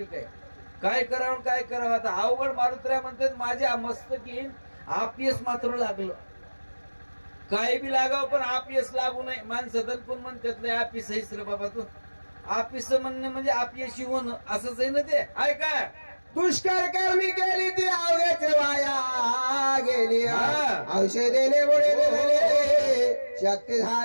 काय करावं काय करावं आता अवघड. मारुतीराय म्हणतात माझ्या मस्तकी अपयश मात्र लागलं. काय बी लागावं पण अपयश लागू नये. माणसं पण म्हणतात नाही अपयश आहेस रे बाबा तू. अपयश म्हणणं म्हणजे अपयशी होणं असंच आहे ना ते. ऐका दुष्कर कर्मी केली ती अवघ्याच वाया गेली. औषधेने मुळे शक्ती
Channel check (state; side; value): inverted; both; correlation -1.00